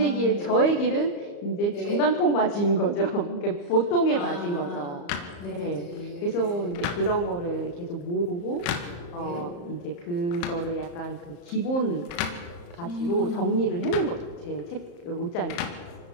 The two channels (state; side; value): late; right; 35 ms